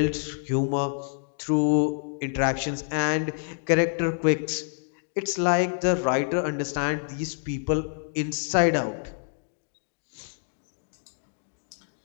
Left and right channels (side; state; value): right; silent; digital silence